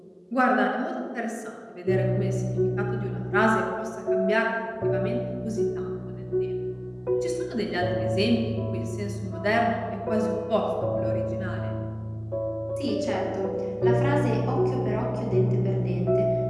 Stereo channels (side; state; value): both; identical; correlation 1.00